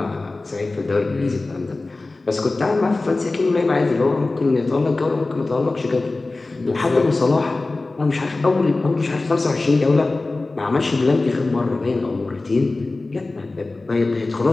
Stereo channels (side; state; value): right; quieter; 3.3 dB